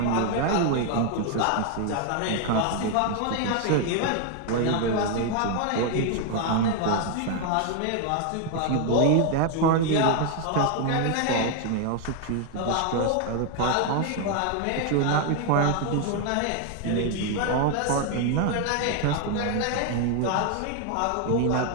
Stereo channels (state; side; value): different; both; correlation 0.00